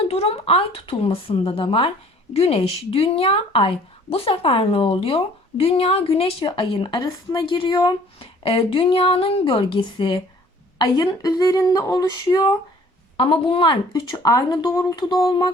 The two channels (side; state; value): both; normal; correlation 0.54